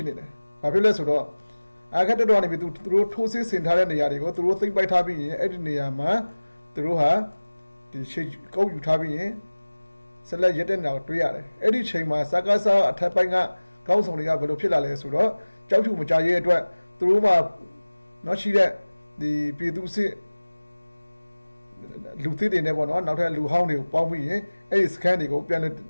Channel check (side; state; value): both; inverted; correlation -1.00